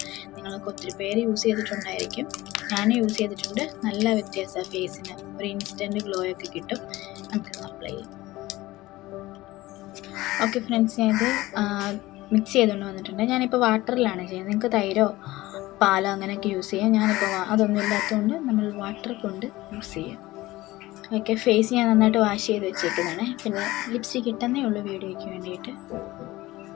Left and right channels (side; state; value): right; quieter; 18.3 dB